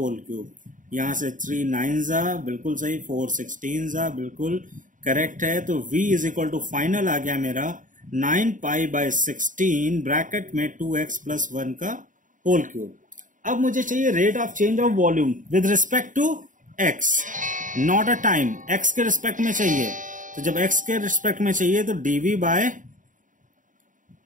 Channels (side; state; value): left; late; 0.38 ms